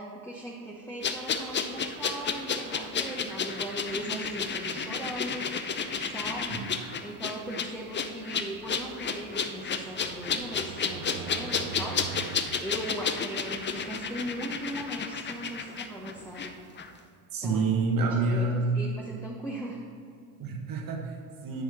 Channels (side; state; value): both; normal; correlation 0.23